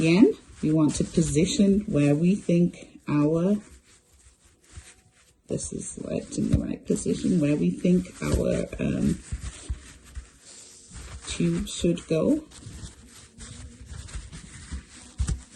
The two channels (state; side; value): identical; both; correlation 1.00